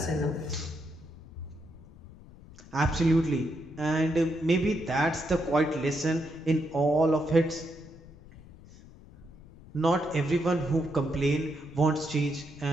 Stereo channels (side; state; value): left; noise; rumble, 20 dB below the sound